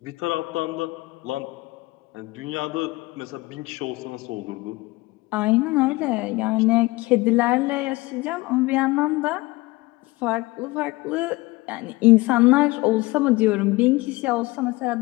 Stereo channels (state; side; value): quieter; right; 21.7 dB